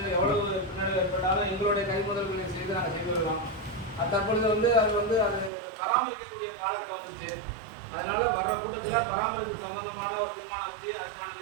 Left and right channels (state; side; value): drops out; left; at 5.5 s